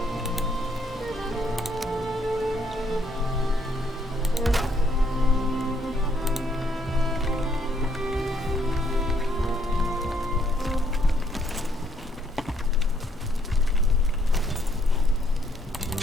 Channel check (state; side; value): normal; both; correlation 0.70